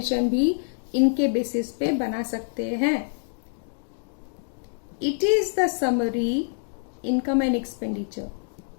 भी इनके बेसिस पे बना सकते हैं। It is the summary income and expenditure,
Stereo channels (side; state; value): right; silent; digital silence